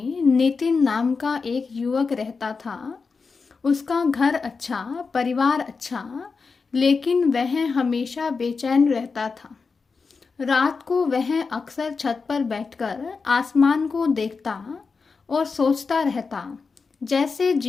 नितिन नाम का एक युवक रहता था। उसका घर अच्छा, परिवार अच्छा, लेकिन वह हमेशा बेचैन रहता था। रात को वह अक्सर छत पर बैठकर आसमान को देखता और सोचता रहता, जैसे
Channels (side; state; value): right; quieter; 4.8 dB